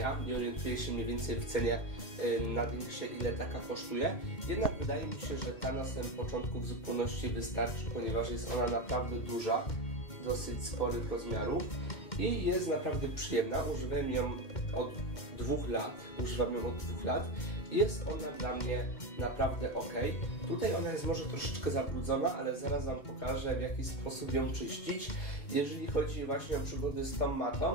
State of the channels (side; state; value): right; late; 2.1 ms